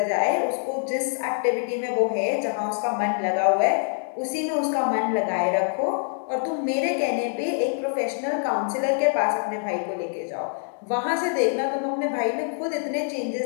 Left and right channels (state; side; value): silent; right; 62 dB below the other